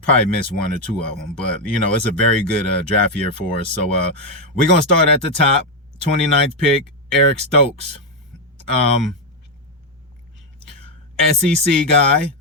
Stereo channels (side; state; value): both; normal; correlation 0.04